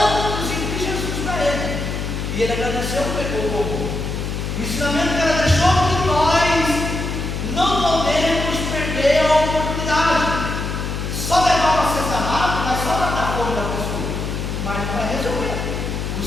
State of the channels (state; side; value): noise; left; hum, 4 dB below the sound